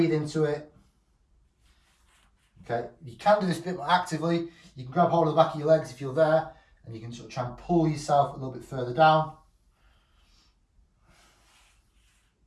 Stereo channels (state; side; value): identical; both; correlation 1.00